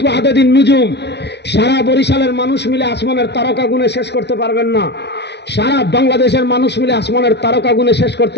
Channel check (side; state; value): right; late; 0.50 ms